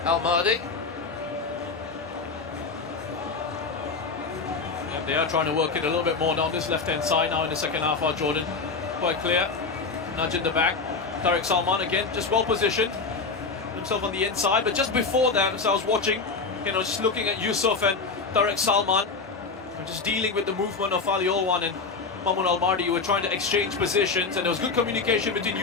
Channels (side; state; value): right; quieter; 4.5 dB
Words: Al-Mahdi. Yeah, they are trying to work it a little bit more down this left-hand side now in the second half. Our Jordan, quite clear. Nudge in the back. Tariq Salman again, just well positioned. Himself on the inside, but just before that, as I was watching, you know, just looking at Yusuf and Tariq Salman, and just dealing with the movement of Ali Olwan and Mahmoud Al-Mahdi, you were trying to exchange positions, and there was good communication between